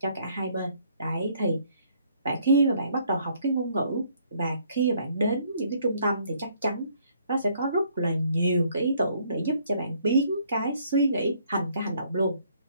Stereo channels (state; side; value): inverted; both; correlation -0.65